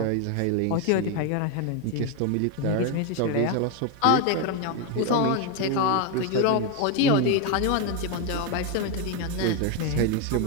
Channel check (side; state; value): both; different; correlation 0.02